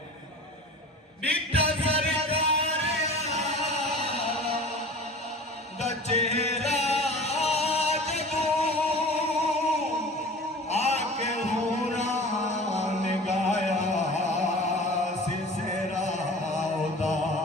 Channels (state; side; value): normal; both; correlation 0.39